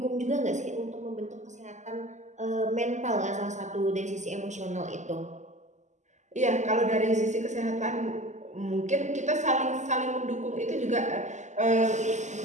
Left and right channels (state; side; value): late; left; 0.34 ms